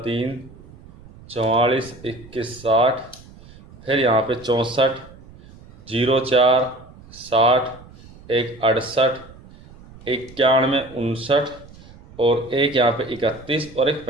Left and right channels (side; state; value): right; noise; rumble, 21 dB below the sound